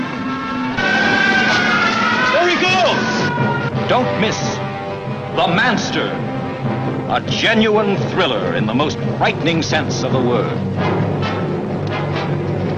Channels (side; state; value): both; identical; correlation 1.00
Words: There he goes! Don't miss the Manster, a genuine thriller in the most frightening sense of the word.